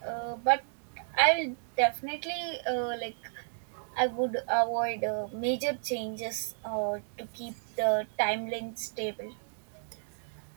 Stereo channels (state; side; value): silent; left; digital silence